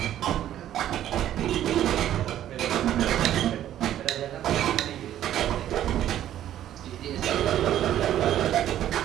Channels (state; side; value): quieter; left; 11.8 dB